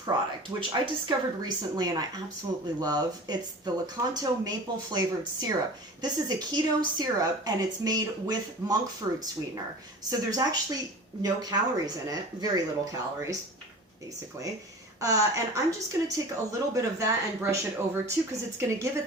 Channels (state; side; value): normal; both; correlation 0.38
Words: which I discovered recently and I absolutely love. It's the Delicata maple flavored syrup. This is a keto syrup, and it's made with monk fruit sweetener. So there's actually no calories in it, very little calories, basically. And I'm just going to take a little bit of that and brush it over too, because it's going to give it